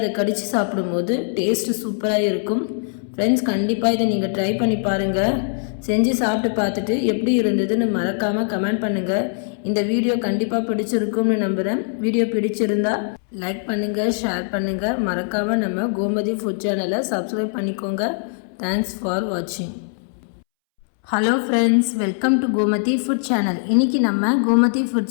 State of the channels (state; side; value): silent; right; 65 dB below the other